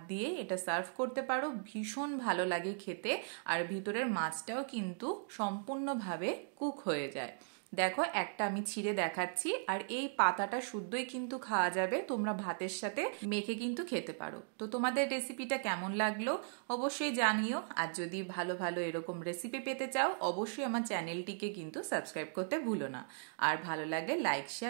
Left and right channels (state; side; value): silent; left; digital silence